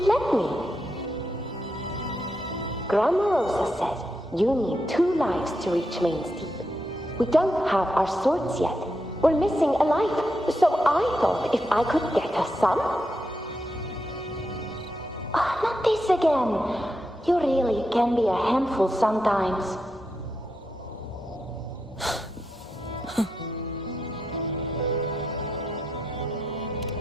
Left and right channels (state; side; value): normal; both; correlation 0.84